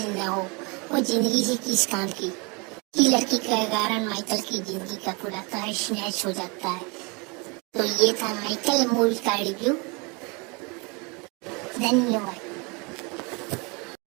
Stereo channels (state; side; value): quieter; left; 29.8 dB